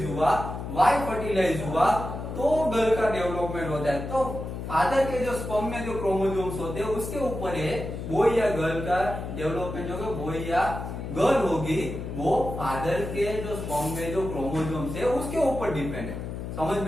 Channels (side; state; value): left; noise; hum, 7 dB below the sound